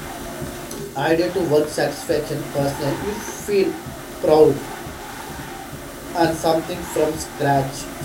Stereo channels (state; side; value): identical; both; correlation 1.00